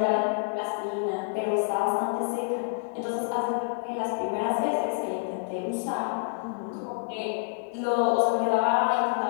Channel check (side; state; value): right; silent; digital silence